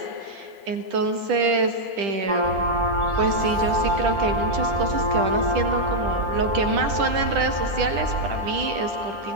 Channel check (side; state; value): left; late; 10 ms